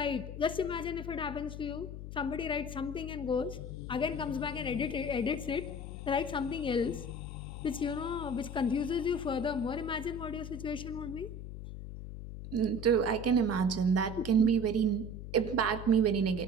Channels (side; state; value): left; noise; hum, 9 dB below the sound